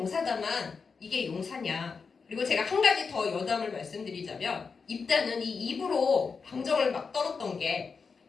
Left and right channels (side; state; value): right; quieter; 5.2 dB